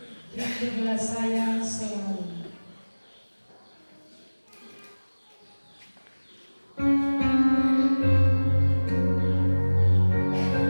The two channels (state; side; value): inverted; both; correlation -1.00